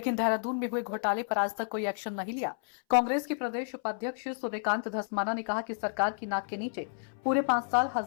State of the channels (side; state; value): right; silent; 57 dB below the other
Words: देहरादून में हुए घोटाले पर आज तक कोई एक्शन नहीं लिया। कांग्रेस के प्रदेश उपाध्यक्ष सूर्यकांत धस्माना ने कहा कि सरकार की नाक के नीचे पूरे 5 साल